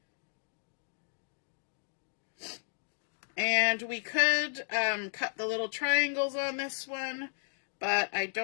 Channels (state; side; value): silent; right; digital silence